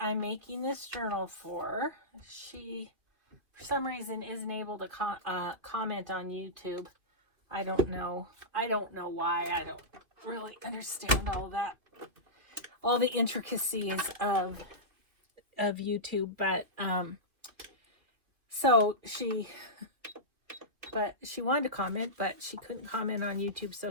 I'm making this journal for. She, for some reason, isn't able to comment on YouTube. I don't know. I don't know why. I don't really understand all the intricacies of YouTube. But so she wanted to comment, but she couldn't comment on YouTube.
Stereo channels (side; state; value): left; late; 2.5 ms